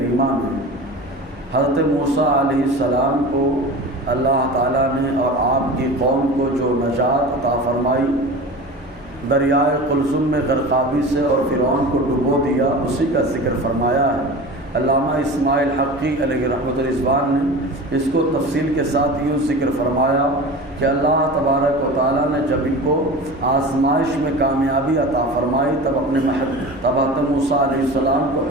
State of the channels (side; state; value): right; noise; hum, 26 dB below the sound